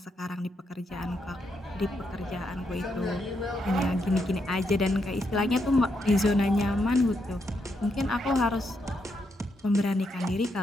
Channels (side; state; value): both; normal; correlation 0.80